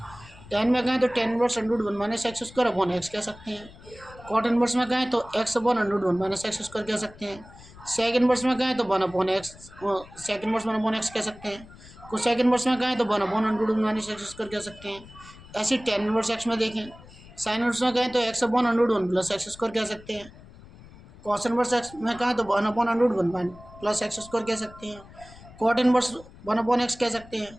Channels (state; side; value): noise; left; rumble, 20 dB below the sound